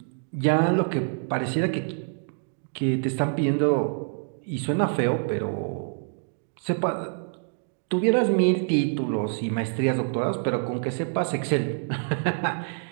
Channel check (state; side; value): silent; left; 61 dB below the other